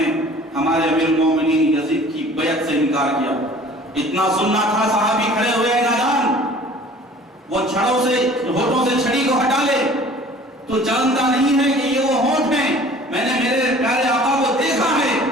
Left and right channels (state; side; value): normal; both; correlation 0.48